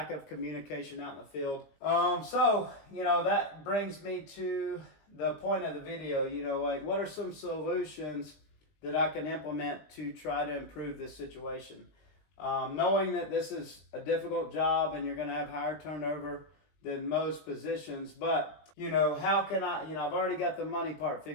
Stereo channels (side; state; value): right; late; 20 ms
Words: of communication out in the field. So, that brings me to the point of the video, like what are some solutions that I can implement to try to improve this situation? Knowing that this is a difficult job and you're going to have higher turnover than most positions, but how can I, I've already got the money part